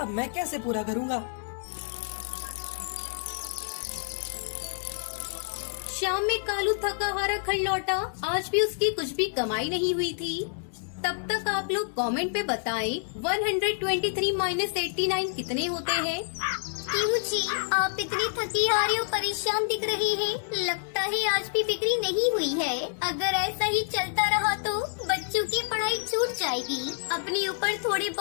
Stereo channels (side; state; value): right; silent; digital silence